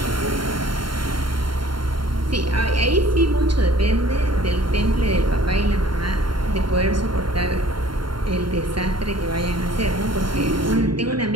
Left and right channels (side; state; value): left; late; 0.73 ms